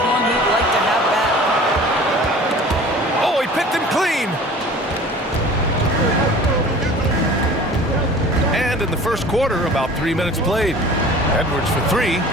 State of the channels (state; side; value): normal; both; correlation 0.44